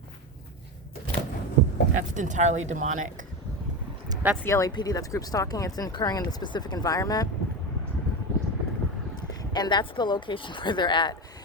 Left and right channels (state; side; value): normal; both; correlation 0.19